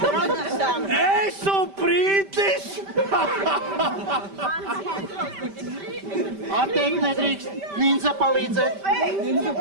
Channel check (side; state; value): left; late; 5.1 ms